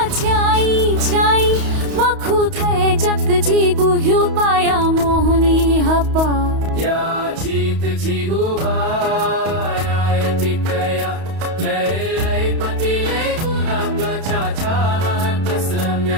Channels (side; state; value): left; late; 31 ms